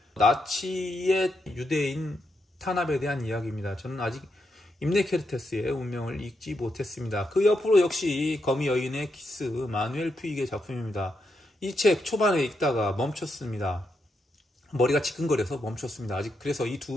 나치의 유대인 탄압에 대한 이야기입니다. 저는 아직 임네케르테스의 운명을 읽지 못했습니다. 그 옆으로 역시 거미 여인의 키스 마누엘 퓨익의 작품입니다. 이 책 초반에 읽다가 멈췄습니다. 머리가 지끈거려서 멈췄습니다. 아직 그래서 이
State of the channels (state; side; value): normal; both; correlation 0.83